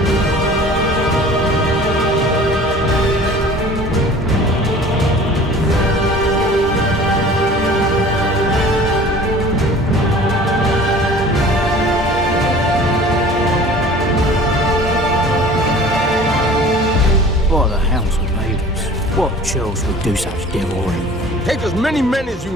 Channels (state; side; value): normal; both; correlation 0.45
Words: What the hounds have made us? What churls would do such devilry? Take as many men as you